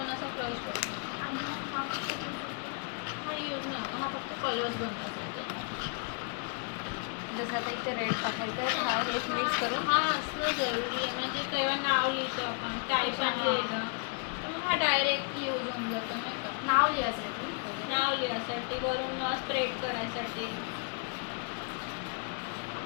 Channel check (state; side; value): quieter; right; 39.5 dB